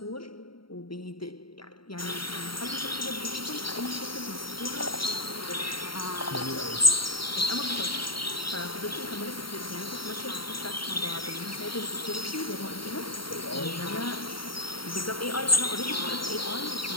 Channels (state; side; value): late; right; 0.74 ms